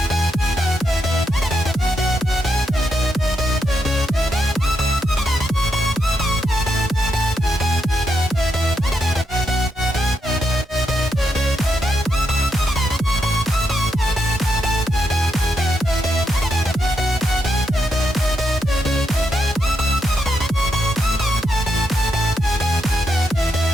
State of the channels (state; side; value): normal; both; correlation 0.82